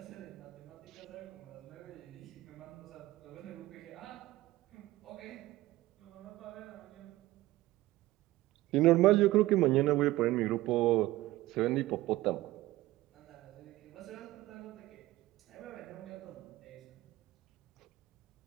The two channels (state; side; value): quieter; left; 17.5 dB